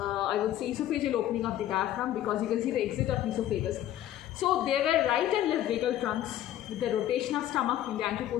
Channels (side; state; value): right; quieter; 12.6 dB